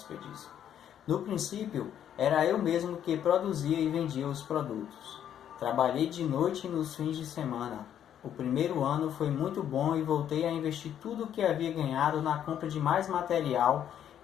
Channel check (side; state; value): right; quieter; 9.9 dB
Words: No princípio, era eu mesmo que produzia e vendia os produtos. Trabalhei de noite e nos fins de semana. O primeiro ano foi muito bom e voltei a investir tudo o que havia ganhado na compra de mais material